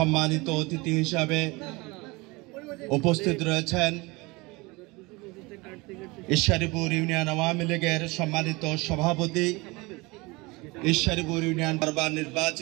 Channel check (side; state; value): left; quieter; 24.3 dB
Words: অতিথি হিসাবে উপস্থিত রয়েছেন ঈশ্বরীপুর ইউনিয়ন আওয়ামী লীগের সম্মানিত সভাপতি, ঈশ্বরীপুর ইউনিয়ন বারবার